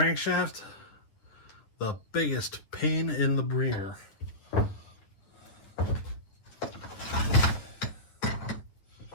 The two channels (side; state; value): right; late; 9.5 ms